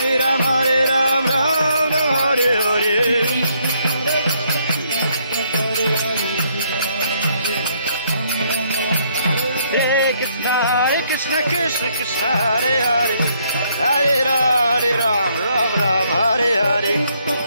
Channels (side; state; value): both; inverted; correlation -0.70